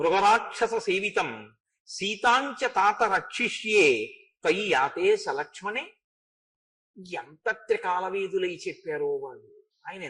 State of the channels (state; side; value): identical; both; correlation 1.00